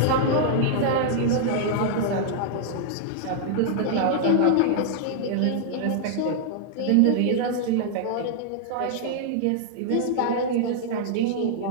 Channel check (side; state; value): both; different; correlation -0.01